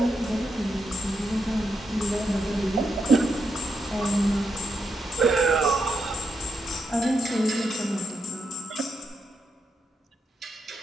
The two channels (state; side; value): normal; both; correlation 0.82